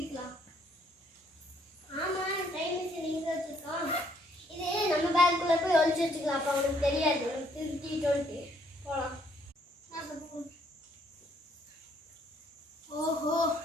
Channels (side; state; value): both; normal; correlation 0.67